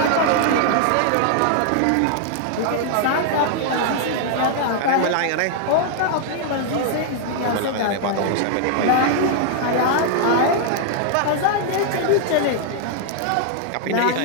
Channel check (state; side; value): different; both; correlation -0.01